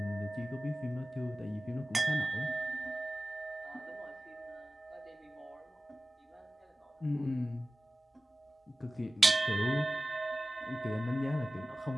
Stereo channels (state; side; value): normal; both; correlation 0.96